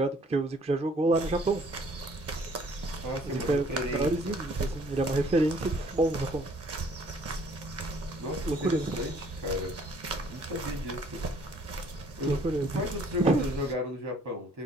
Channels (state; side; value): normal; both; correlation 0.59